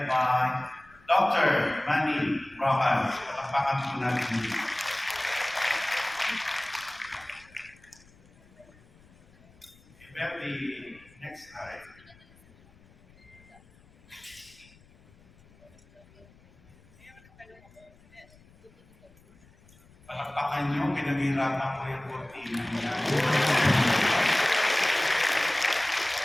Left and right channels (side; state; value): left; noise; rumble, 27 dB below the sound